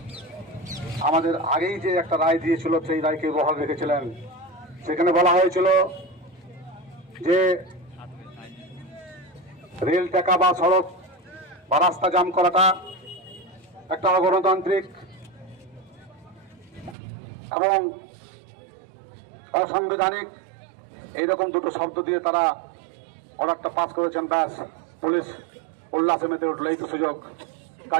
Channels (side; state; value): left; drops out; at 16.9 s